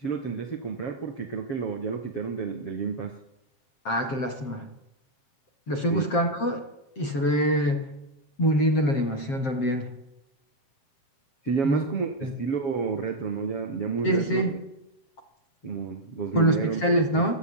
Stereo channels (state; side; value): late; right; 7.5 ms